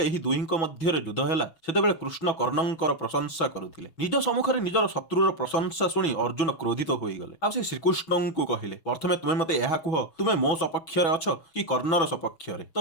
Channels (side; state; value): right; late; 6.1 ms